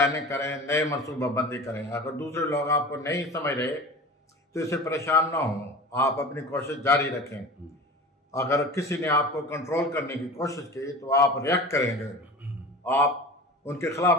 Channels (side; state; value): both; normal; correlation 0.35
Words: کریں, نئے منصوبہ بندی کریں. اگر دوسرے لوگ آپ کو نہیں سمجھ رہے تو اسے پریشان نہ ہوں, آپ اپنی کوشش جاری رکھیں. اگر کسی نے آپ کو کنٹرول کرنے کی کوشش کی تو آپ ریئیکٹ کریں گے, آپ ان کے